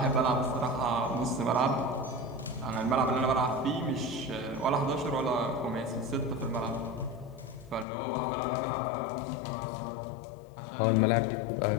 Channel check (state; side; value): drops out; right; at 7.9 s